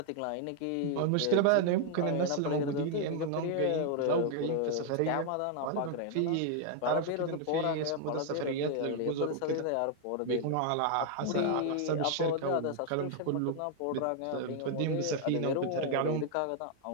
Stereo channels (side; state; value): both; different; correlation 0.00